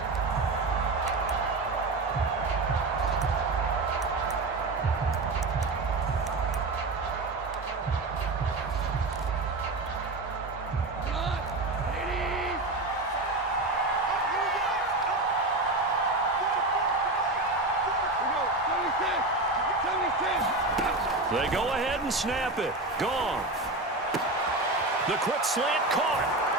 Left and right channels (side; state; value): left; quieter; 3.0 dB